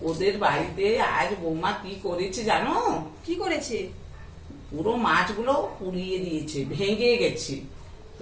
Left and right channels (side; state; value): both; identical; correlation 1.00